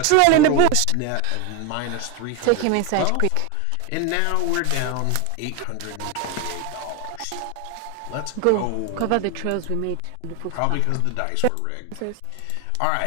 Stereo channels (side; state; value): both; different; correlation 0.02